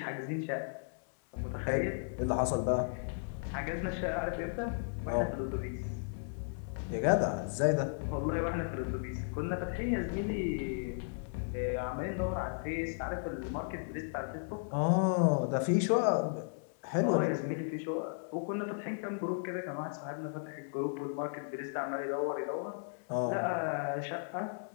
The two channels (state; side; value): silent; right; digital silence